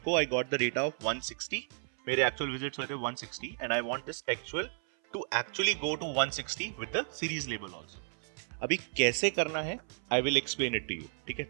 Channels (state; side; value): silent; left; 56 dB below the other